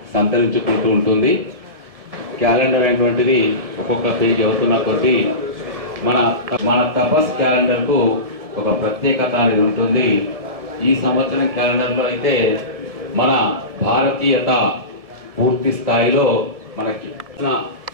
సంతరించుకుంటూ ఉంటుంది. క్యాలెండర్ అనేటువంటిది ఒక్కొక్క పేజీ అవుతున్న కొద్దీ మన తపస్ క్యాలెండర్కు ఒక ప్రత్యేకత అనేది ఉంటుంది. ఈ సంవత్సరం క్యాలెండర్లో అయితే మన భారతీయత పూర్తి స్థాయిలో మనకి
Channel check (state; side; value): late; left; 1.7 ms